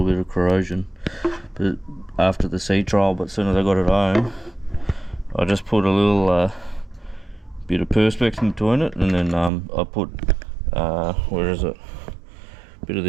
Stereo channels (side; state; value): left; drops out; at 9.5 s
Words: bit of corrosion but after the sea trial. But as soon as I got it home, I just put a little bit of perspex in between it, and then I put where is it, a bit of